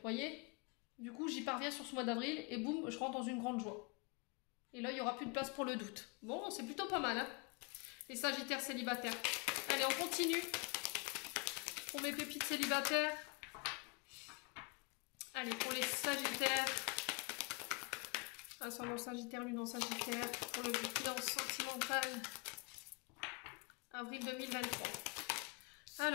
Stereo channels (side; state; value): right; quieter; 31.5 dB